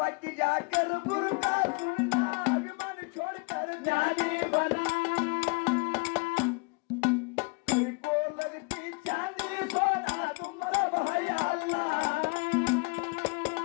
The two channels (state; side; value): quieter; right; 31.1 dB